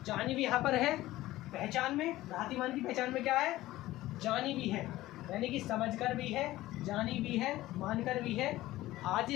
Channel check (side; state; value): right; quieter; 16.5 dB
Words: जानी भी यहाँ पर है पहचान में, भ्रातिमान की पहचान में क्या है, जानी भी है, यानी कि समझकर भी है, जानी भी है, मानकर भी है,